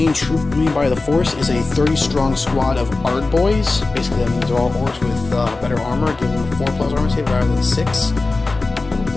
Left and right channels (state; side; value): quieter; right; 3.5 dB